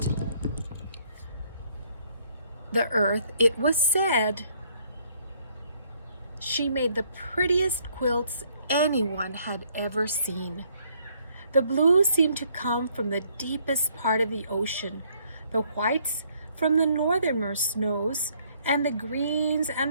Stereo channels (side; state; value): both; inverted; correlation -0.66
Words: the earth, it was said she made the prettiest quilts anyone had ever seen. The blue seemed to come from the deepest part of the ocean, the whites from the northernmost snows, and the greens